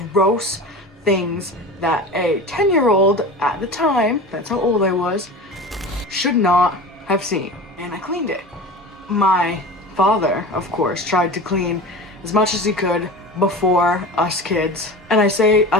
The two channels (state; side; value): normal; both; correlation 0.32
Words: gross things that a 10-year-old at the time, that's how old I was, should not have seen. And I cleaned it. My father, of course, tried to clean as much as he could before us kids. And I say